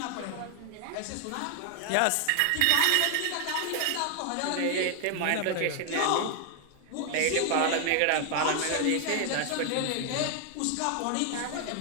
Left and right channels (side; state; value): both; different; correlation 0.00